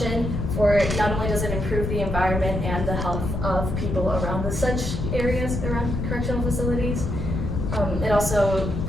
for not only does it improve the environment and the health of people around the such areas, around correctional facilities, it also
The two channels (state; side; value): noise; left; rumble, 2 dB below the sound